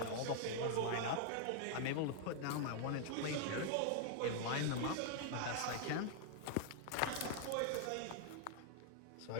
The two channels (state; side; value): different; both; correlation -0.01